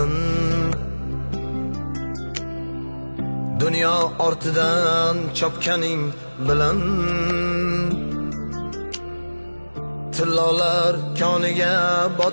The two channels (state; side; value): inverted; both; correlation -1.00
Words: dunyo ortidan chopganing bilan tillolar koniga